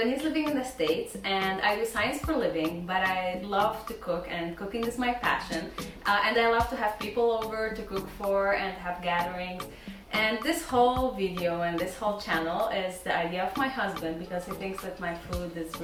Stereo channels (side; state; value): both; identical; correlation 1.00